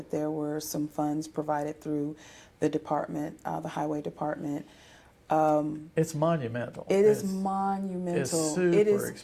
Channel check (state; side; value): identical; both; correlation 1.00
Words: there were some funds provided through the department, the highway department. It's monumental. It is monumental. It's super